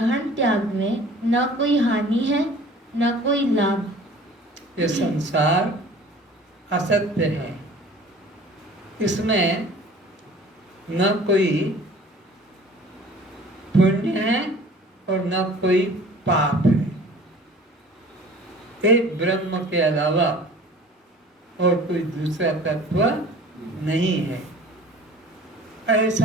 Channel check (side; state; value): both; normal; correlation 0.46